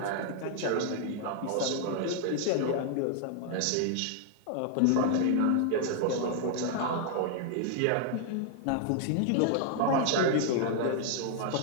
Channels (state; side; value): different; both; correlation 0.00